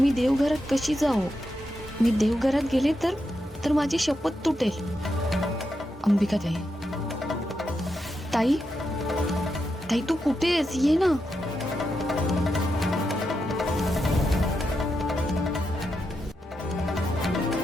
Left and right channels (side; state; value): both; normal; correlation 0.85